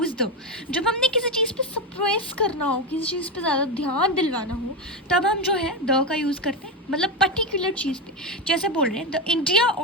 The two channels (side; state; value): both; normal; correlation 0.13